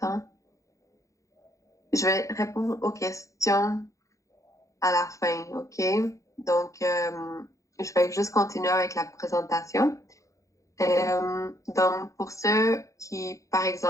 Je vais répondre aux questions à la fin, OK? Donc, je vais juste continuer avec la présentation. Donc, pour ceux qui, par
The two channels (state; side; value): late; right; 0.15 ms